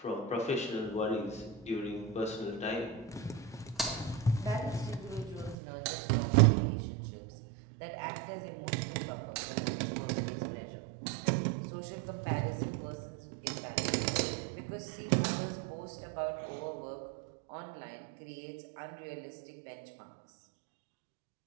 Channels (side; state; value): left; drops out; at 5.6 s